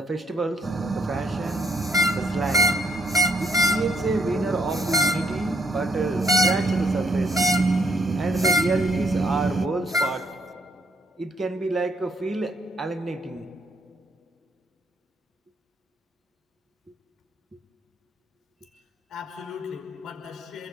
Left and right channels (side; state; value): both; normal; correlation 0.70